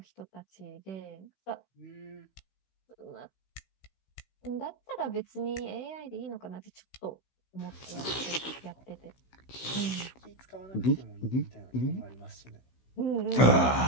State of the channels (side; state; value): right; late; 16 ms